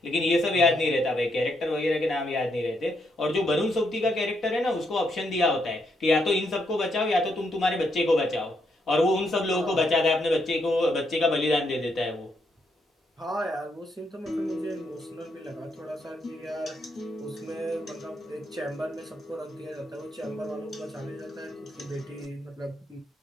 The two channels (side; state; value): both; normal; correlation 0.78